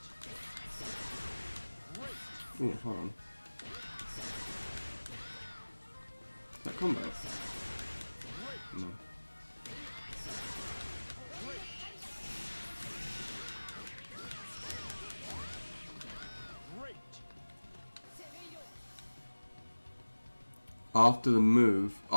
Ooh, hold on. Is that combo? No. After the move.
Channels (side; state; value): both; inverted; correlation -1.00